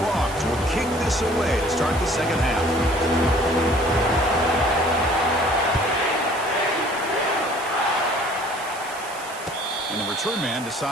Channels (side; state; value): right; noise; hiss, 15 dB below the sound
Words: Frogs will kick this away to start the second half. And the return man